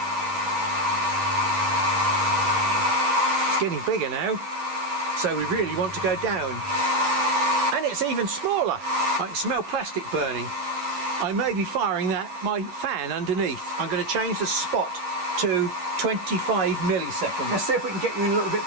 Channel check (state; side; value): late; left; 10 ms